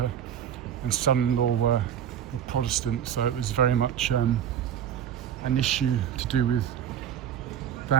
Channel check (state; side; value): quieter; left; 9.7 dB